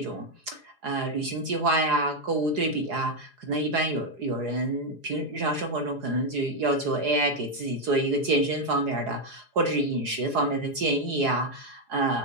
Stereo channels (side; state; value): left; late; 4.8 ms